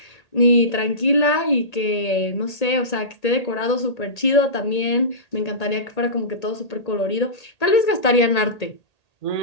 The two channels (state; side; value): late; right; 1.8 ms